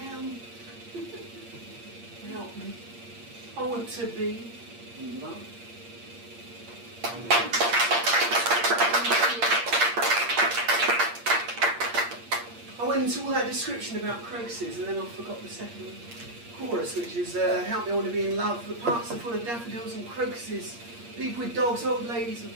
Help me. I want to be in love. I went into all that description about crocuses and then I forgot the second chorus, which is help me, I want to be in love. The parks are full of daffodils and crocuses, people with dogs, old ladies with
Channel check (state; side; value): late; left; 8.6 ms